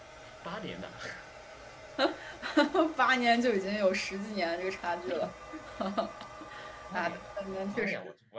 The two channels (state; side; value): identical; both; correlation 1.00